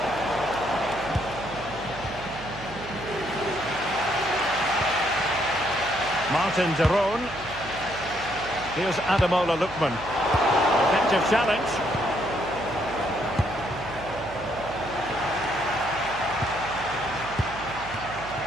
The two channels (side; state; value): right; noise; hum, 14 dB below the sound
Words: Martin de Roon. Here's Ademola Lookman. Effective challenge.